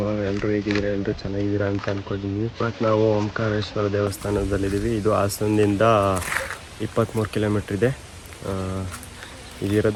ಎಲ್ಲರೂ ಹೇಗಿದ್ದೀರಾ? ಎಲ್ಲರೂ ಚೆನ್ನಾಗಿದ್ದೀರಾ ಅಂತ ಅಂದ್ಕೊಂಡಿದ್ದೀವಿ. ಬಟ್ ನಾವು ಓಂಕಾರೇಶ್ವರ ದೇವಸ್ಥಾನದಲ್ಲಿದ್ದೀವಿ. ಇದು ಹಾಸನದಿಂದ 23 ಕಿಲೋಮೀಟ್ರ್ ಇದೆ.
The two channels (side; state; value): both; identical; correlation 1.00